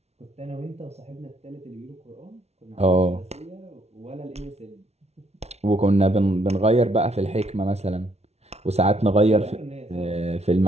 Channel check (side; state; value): left; late; 0.31 ms